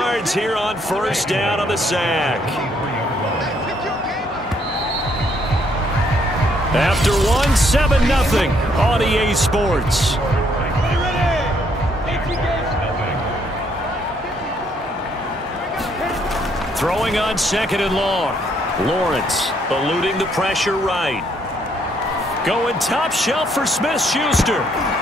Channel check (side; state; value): both; normal; correlation 0.70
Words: here on first down on the sack. After one, 7-0 on EA Sports. Throwing on 2nd and long. Lawrence eluding the pressure right. Going top shelf for Smith-Schuster.